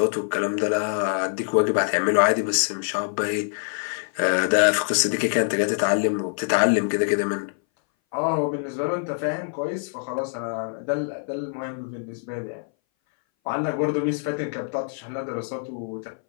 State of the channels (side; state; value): right; silent; 60 dB below the other